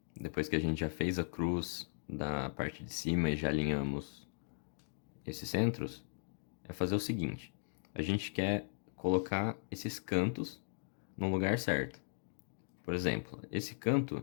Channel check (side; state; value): right; silent; digital silence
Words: depois que a gente já fez a cruz da parte de cima e já alinhamos esses centros, é fazer o seguinte. A gente quer colocar esses cantos no lugar certo. Por exemplo, esse canto